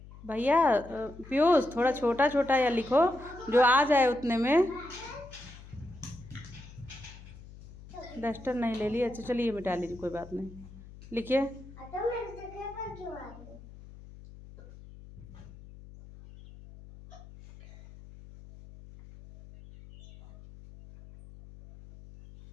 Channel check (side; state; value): left; noise; hum, 18 dB below the sound